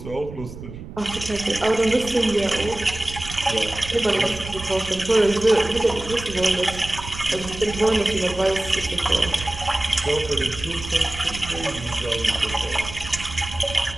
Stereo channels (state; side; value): noise; right; rumble, 12 dB below the sound